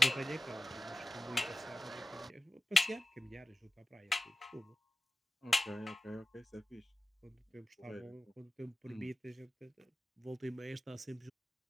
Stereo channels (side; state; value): both; normal; correlation 0.95